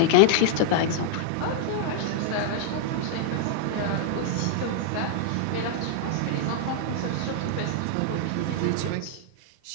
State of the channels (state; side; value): different; both; correlation -0.01